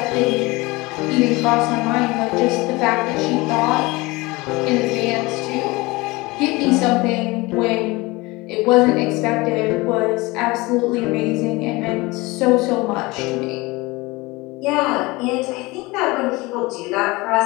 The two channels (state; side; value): quieter; right; 22.8 dB